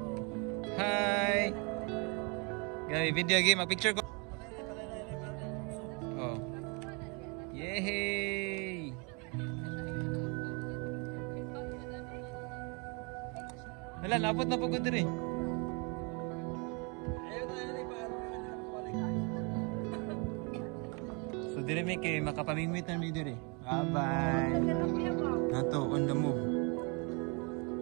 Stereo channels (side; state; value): left; quieter; 32.7 dB